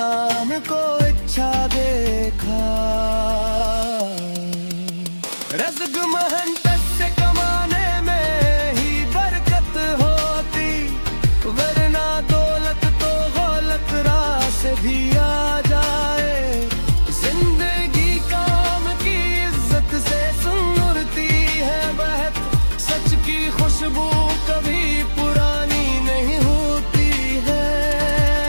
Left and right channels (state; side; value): inverted; both; correlation -1.00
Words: को अच्छा देखा। रज़्क़ मेहनत से कमाने में ही बरकत होती, वरना दौलत तो गलत राह से भी आ जाए। जिंदगी काम की इज्जत से सुनती है बहक, सच की खुशबू कभी पुरानी नहीं होती है।